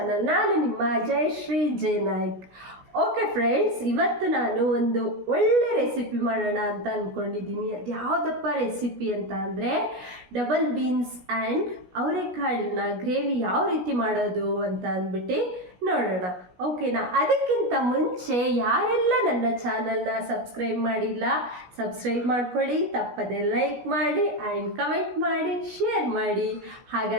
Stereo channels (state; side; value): late; left; 16 ms